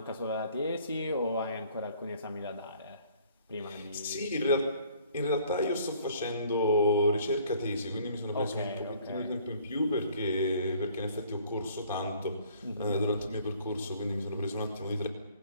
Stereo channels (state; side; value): inverted; both; correlation -0.57